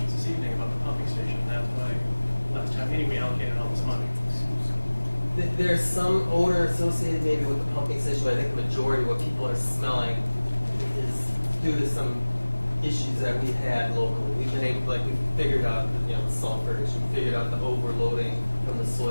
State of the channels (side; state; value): both; inverted; correlation -1.00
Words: this evening, about the pumping station. That's why last town meeting we allocated all this money. There's some odor associated maybe with the pumping station, but I think the majority of what people are smelling is due to some issues that we've had locally. We've been able, we figured out, the sulfur issue, we figured out the overloading from the